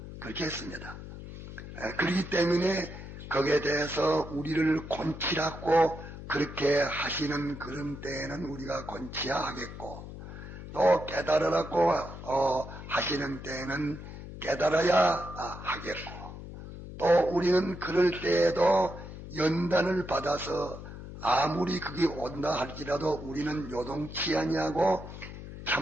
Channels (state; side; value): noise; left; hum, 12 dB below the sound